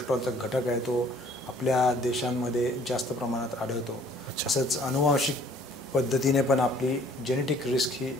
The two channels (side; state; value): both; normal; correlation 0.57